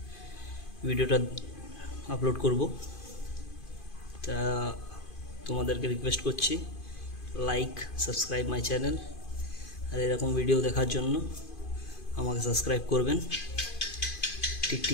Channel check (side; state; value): right; late; 2.5 ms